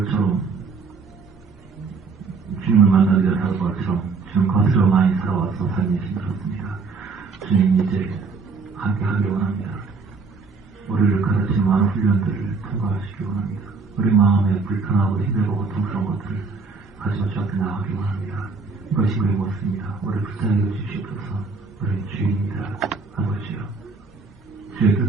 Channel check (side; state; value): left; quieter; 4.5 dB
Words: 주님을 만나기 전에 사도 바울처럼 주님 겉으로 많이 살아와서 삶이 힘들었습니다. 주님 이제 함께 하길 원합니다. 우리를 가르치는 많은 훈련들을 통과하시기 원합니다. 우리 마음에 불편하고 힘들고 고통스러운 것들을 가지고 주 앞에 나가기 원합니다. 이것이 우리의 모습입니다. 우리를 불쌍히 여주시옵소서. 우리의 주인입니다. 아버지요. 주의